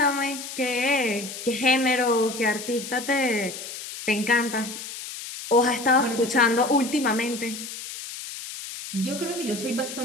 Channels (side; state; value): left; noise; hiss, 10 dB below the sound